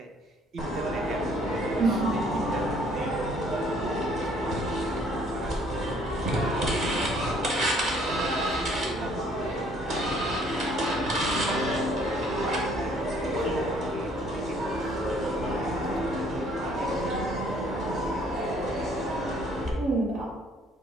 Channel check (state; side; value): normal; both; correlation 0.61